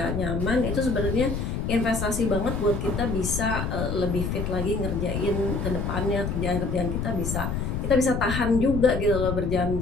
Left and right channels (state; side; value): noise; left; rumble, 2 dB below the sound